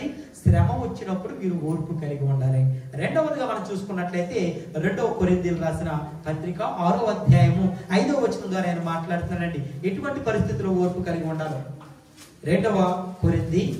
శ్రమ వచ్చినప్పుడు మీరు ఓర్పు కలిగి ఉండాలి. రెండవదిగా మనం చూసుకున్నట్లయితే 2 కొరింథీయులకు రాసిన పత్రిక 6వ అధ్యాయము 5వ వచనం ద్వారా ఆయన మాట్లాడుతున్నాడండి. ఎటువంటి పరిస్థితుల్లో ఓర్పు కలిగి ఉండాలో. 2 కొరింథీ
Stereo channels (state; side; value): identical; both; correlation 1.00